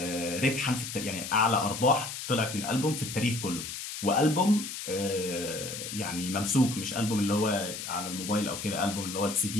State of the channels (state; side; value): noise; left; hiss, 7 dB below the sound